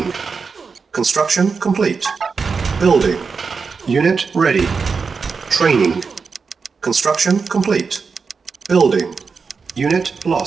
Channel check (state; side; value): quieter; left; 5.1 dB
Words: Construction complete. Building. Unit ready. Training. Construction complete. Building. Unit